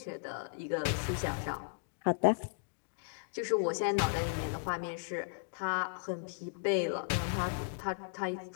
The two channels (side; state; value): right; silent; digital silence